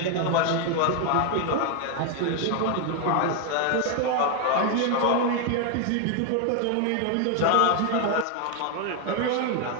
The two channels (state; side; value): different; both; correlation 0.01